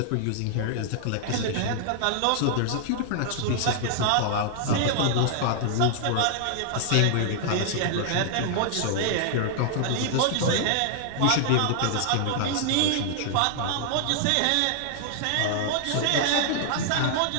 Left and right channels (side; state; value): both; different; correlation -0.01